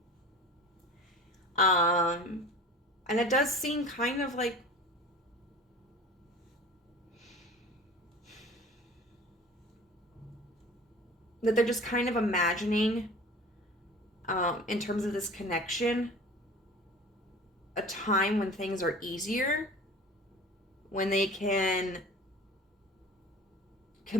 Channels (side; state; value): both; normal; correlation 0.41